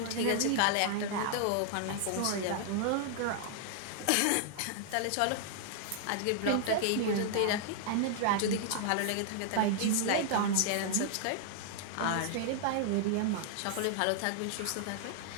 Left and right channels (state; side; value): different; both; correlation -0.01